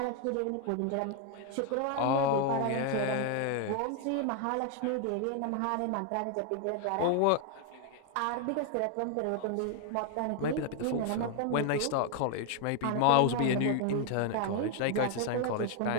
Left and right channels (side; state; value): both; different; correlation 0.00